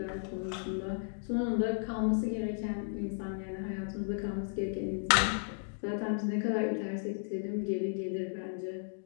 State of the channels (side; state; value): right; silent; digital silence